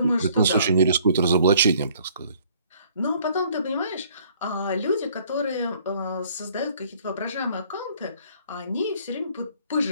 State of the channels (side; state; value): both; inverted; correlation -0.59